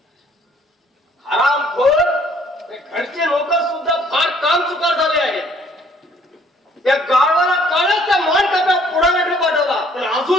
हरामखोर ते घरचे लोक सुद्धा फार काम चुकार झाले आहेत. त्या गावाला काळच त्या मान काप्यात पुढाऱ्याकडे पाठवला पण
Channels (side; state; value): both; normal; correlation 0.60